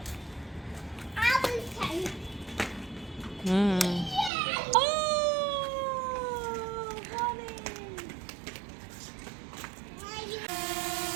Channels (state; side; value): drops out; left; at 4.3 s